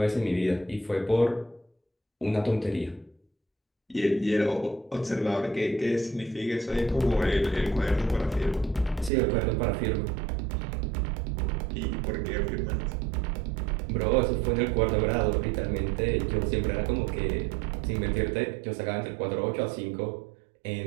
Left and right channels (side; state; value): left; drops out; at 9.1 s